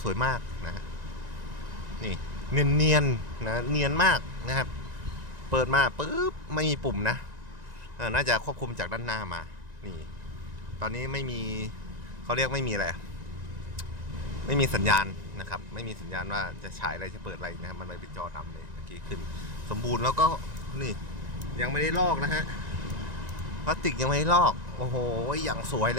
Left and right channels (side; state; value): left; late; 1.9 ms